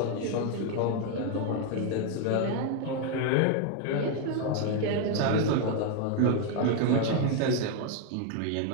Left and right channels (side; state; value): both; different; correlation 0.01